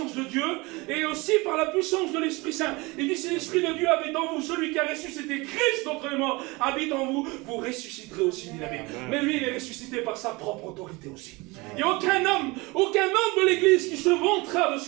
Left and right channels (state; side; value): quieter; left; 24.4 dB